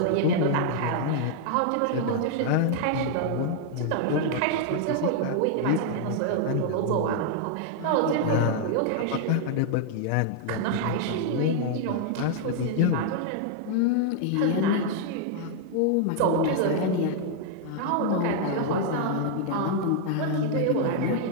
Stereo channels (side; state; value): both; different; correlation 0.00